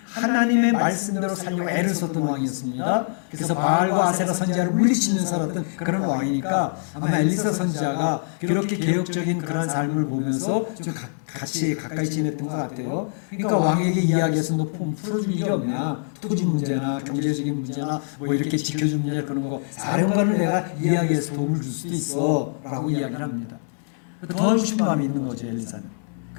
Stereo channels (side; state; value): right; silent; digital silence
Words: 하나님의 말씀대로 살려고 애를 썼던 왕이었습니다. 그래서 바알과 아세라 선지자를 물리치면서 살았던 그런 왕이니까 아마 엘리사 선지자가 그렇게 개혁적인 그런 삶을 보면서 좀 같이 가까이 지냈던 것 같아요. 그러니까 왕에게 이야기해서 너 풀어줄 일이 없냐, 토지 문제나 경제적인 문제나 뭐 이렇게 지켜줄 문제 그런 거 사령관을 내가 이야기해서 도움을 줄 수도 있어 라고 이야기를 합니다. 도와주고 싶은 마음이 있는 거죠, 엘리사는.